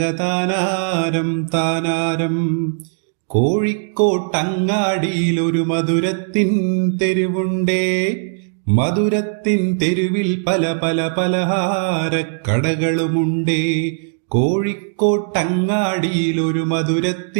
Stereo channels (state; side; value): silent; left; digital silence